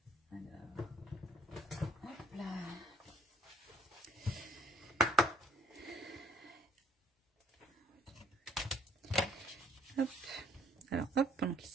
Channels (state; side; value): normal; both; correlation 0.60